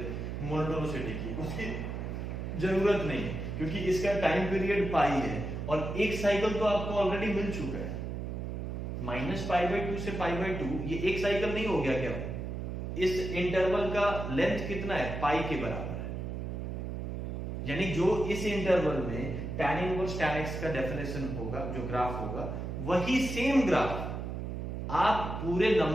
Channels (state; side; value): noise; right; hum, 5 dB below the sound